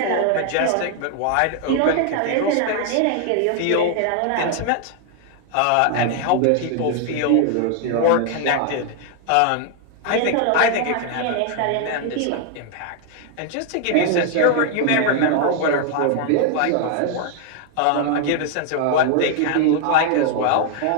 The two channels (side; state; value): both; different; correlation 0.00